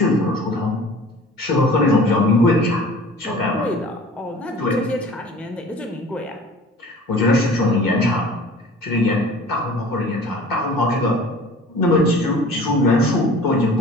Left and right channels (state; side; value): normal; both; correlation 0.45